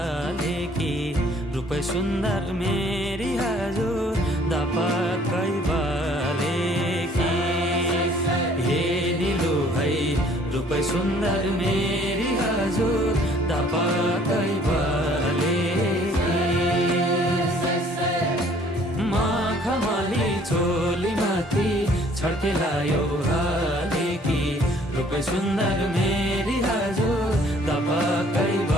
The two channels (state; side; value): normal; both; correlation 0.58